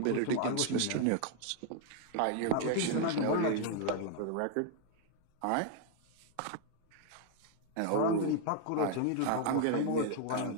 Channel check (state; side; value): different; both; correlation 0.00